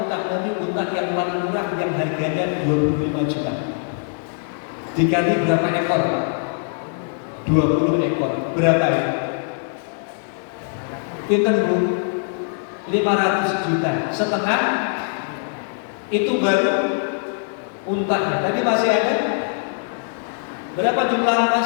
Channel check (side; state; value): right; silent; digital silence